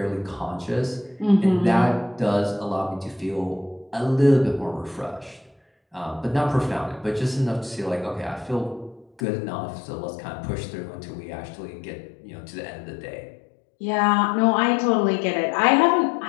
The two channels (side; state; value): right; drops out; at 9.2 s